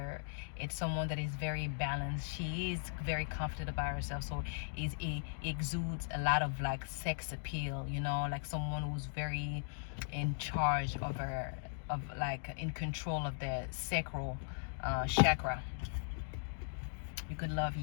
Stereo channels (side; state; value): right; silent; digital silence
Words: it's someone that is very balanced. She is very confident about herself, so it exudes a lot of like sex appeal, like someone who's very in charge of her, of like in control of the sacral chakra. You could love